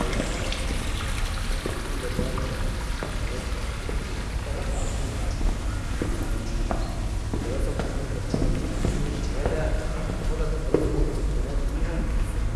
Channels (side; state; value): both; identical; correlation 1.00